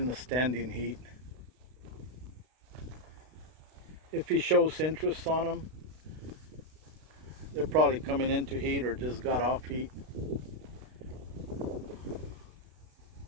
the standing heat. If he shows interest on them, they're probably coming into heat or just got off heat.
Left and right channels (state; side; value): late; left; 32 ms